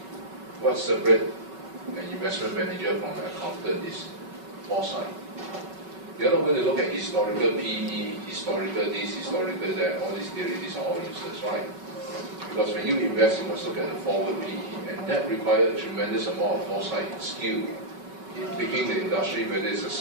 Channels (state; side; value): late; left; 5.3 ms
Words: What separates an investment manager from an accountant is foresight. They're not going to look at historical PE, historical this, historical that, all these theories, these are all useless, right? Because when you invest, you must look at the forward PE, and that requires a tremendous amount of foresight and skill in picking the industry, whether it's a